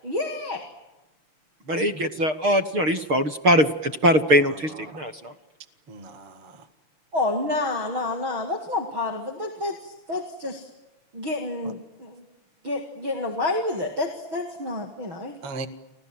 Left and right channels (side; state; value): left; late; 6.5 ms